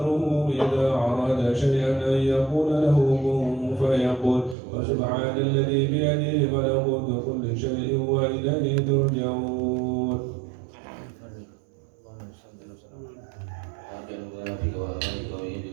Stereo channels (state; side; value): drops out; left; at 4.5 s